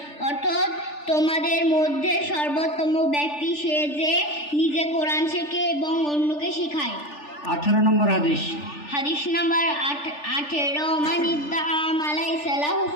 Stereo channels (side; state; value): right; late; 3.4 ms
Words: অর্থ তোমাদের মধ্যে সর্বোত্তম ব্যক্তি সে যে নিজে কোরআন শেখে এবং অন্যকে শেখায়। 18 নম্বর হাদিস। হাদিস নাম্বার 18 মান ইদ্দাআ মালাইসা লাহু